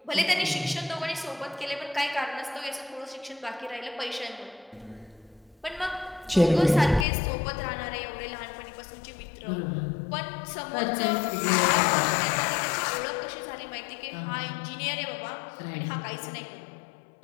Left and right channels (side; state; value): right; drops out; at 7.1 s